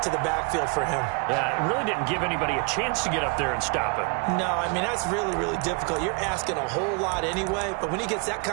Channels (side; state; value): left; quieter; 33.4 dB